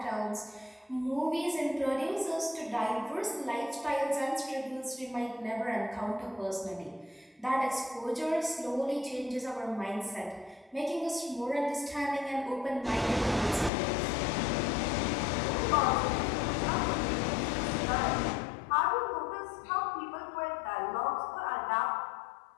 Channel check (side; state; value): right; drops out; at 13.7 s